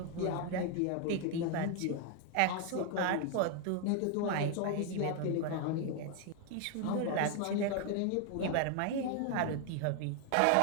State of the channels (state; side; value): different; both; correlation 0.01